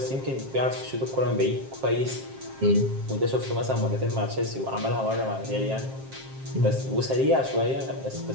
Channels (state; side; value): late; left; 7.5 ms